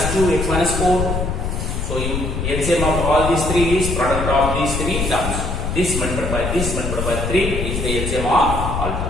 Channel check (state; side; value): noise; left; rumble, 2 dB below the sound